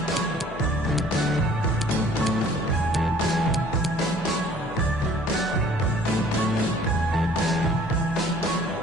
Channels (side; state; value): both; normal; correlation 0.54